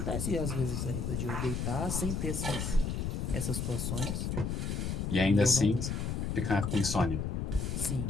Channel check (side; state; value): left; noise; rumble, 1 dB below the sound